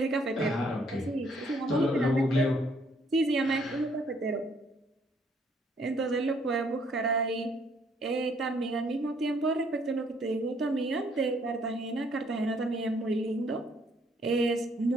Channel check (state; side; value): normal; both; correlation 0.66